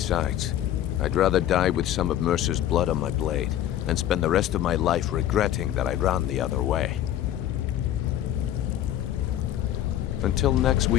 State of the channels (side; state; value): right; quieter; 11.8 dB